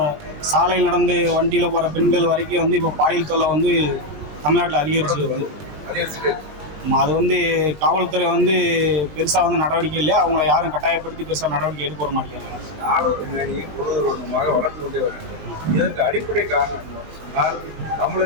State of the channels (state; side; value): late; left; 19 ms